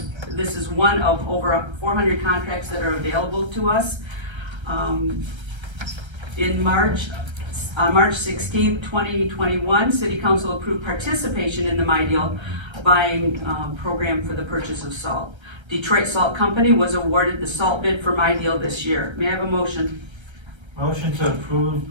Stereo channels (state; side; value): late; left; 1.3 ms